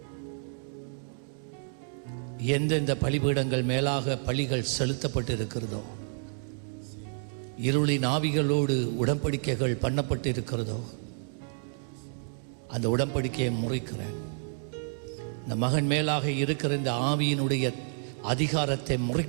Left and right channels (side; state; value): left; silent; digital silence